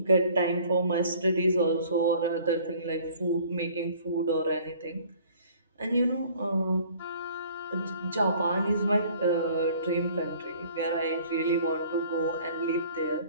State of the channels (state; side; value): inverted; both; correlation -0.53